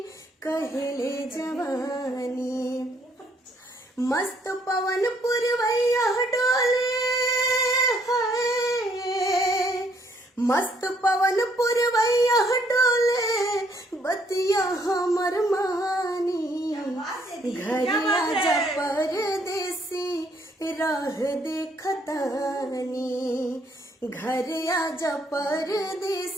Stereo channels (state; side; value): normal; both; correlation 0.68